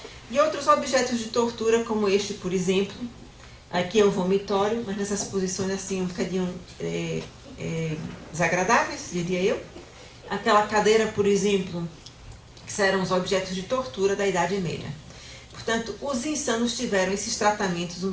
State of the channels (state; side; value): identical; both; correlation 1.00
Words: E outros objetos de tortura, como este, por exemplo. Aqui é o vomitório, mas nessas posições assim um bocadinho desagradáveis, diria eu. Aquela cadeira, por exemplo, que eram os objetos de tortura da Idade Média. Portanto, os insanos tiveram esses tratamentos